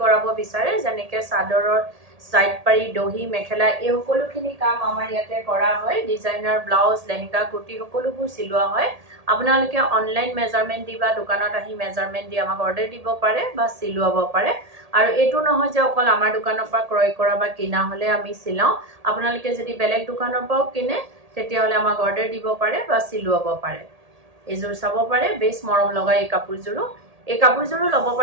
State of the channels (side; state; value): left; late; 1.8 ms